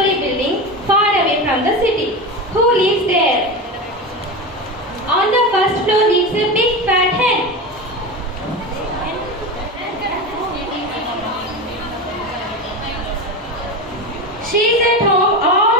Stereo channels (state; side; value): normal; both; correlation 0.22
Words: building far away from the city. Who lives there? On the first floor lives a big fat hen. She is at home